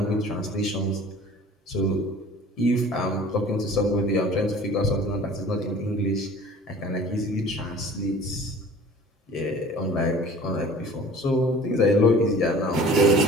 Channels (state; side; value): normal; both; correlation 0.46